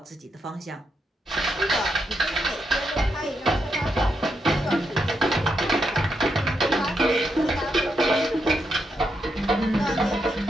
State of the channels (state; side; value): normal; both; correlation 0.82